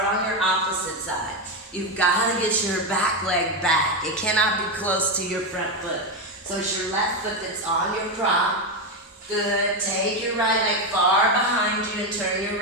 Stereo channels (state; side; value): normal; both; correlation 0.10